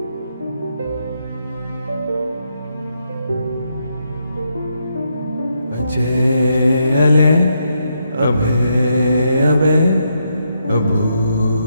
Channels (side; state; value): both; inverted; correlation -0.79